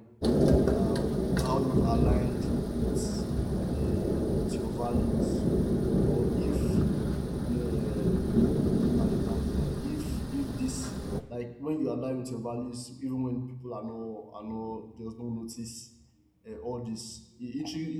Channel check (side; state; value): both; identical; correlation 1.00